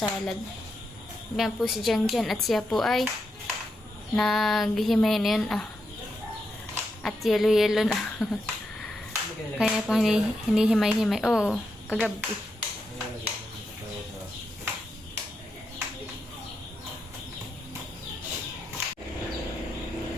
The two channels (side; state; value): both; normal; correlation 0.84